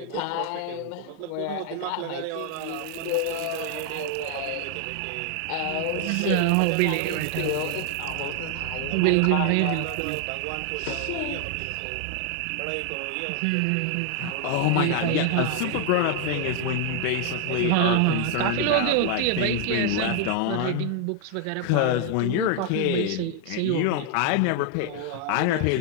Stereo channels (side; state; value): both; different; correlation 0.00